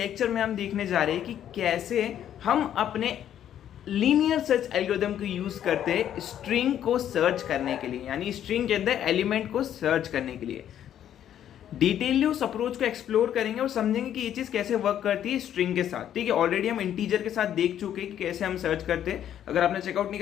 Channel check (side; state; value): right; quieter; 10.5 dB